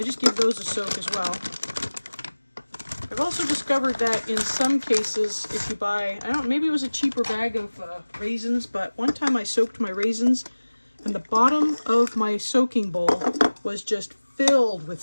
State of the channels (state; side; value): inverted; both; correlation -1.00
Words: just give those a soak as well. I've also discovered that in some cases, if you buy, maybe it was a cheaper bag of raisins, but one time I soaked my raisins, and the bottom of my soaking bowl was just filled